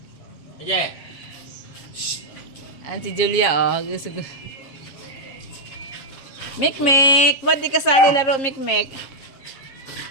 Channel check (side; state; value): right; late; 7.4 ms